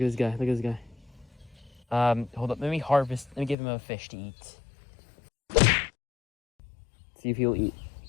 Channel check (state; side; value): drops out; right; at 3.6 s